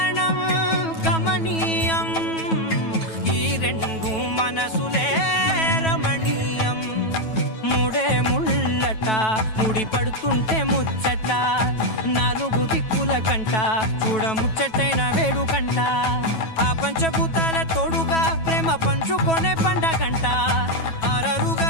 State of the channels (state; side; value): late; right; 9.2 ms